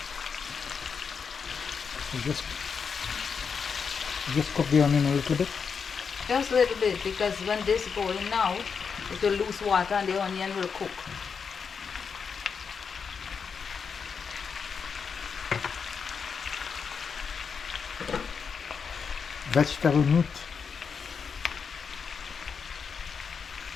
So just cook the onion a little bit. Just a little bit, because when this goes in now, it will lose water and the onion will cook. vegetable meat.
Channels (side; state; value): right; quieter; 6.0 dB